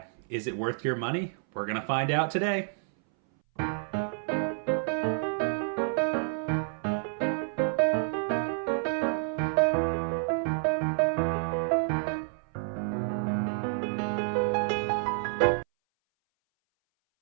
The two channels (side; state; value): left; silent; 58 dB below the other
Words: Is it worth your money? We're gonna find out today.